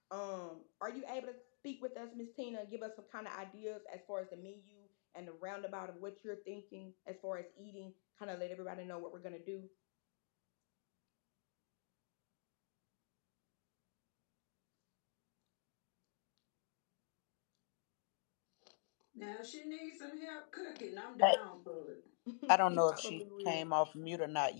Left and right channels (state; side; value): silent; right; digital silence